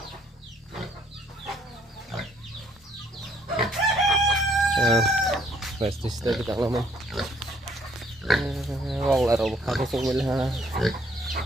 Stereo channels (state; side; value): normal; both; correlation 0.65